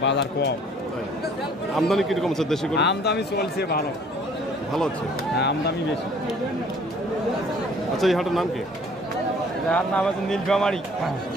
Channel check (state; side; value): normal; both; correlation 0.56